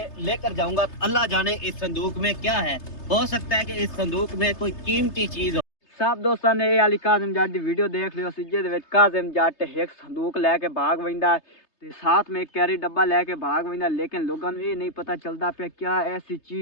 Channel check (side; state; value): right; late; 3.3 ms